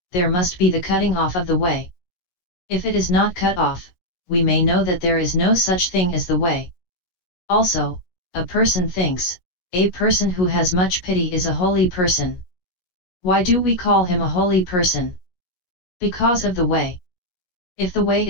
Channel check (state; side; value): late; right; 17 ms